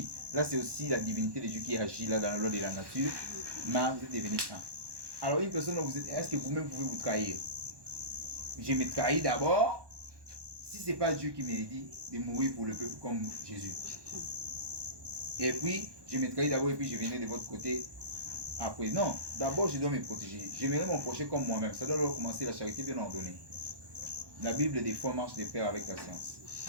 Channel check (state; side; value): late; left; 1.1 ms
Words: Là, c'est aussi la divinité de Dieu qui agit là dans la loi de la nature. Mais vous êtes devenu un. Alors une personne, est-ce que vous-même pouvez vous trahir? Je me trahis d'abord. Si ce n'est pas Dieu qui m'a dit de mourir pour le peuple comme Jésus. Et puis, je me trahis d'abord et puis je venais de votre côté après. Non, d'abord je dois me protéger. J'aimerais mon prochain comme moi-même. Ça doit commencer la charité bien ordonnée. La Bible des fois marche de pair avec la science.